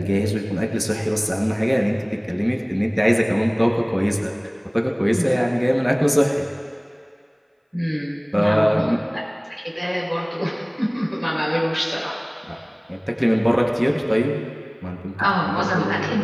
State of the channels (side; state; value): both; identical; correlation 1.00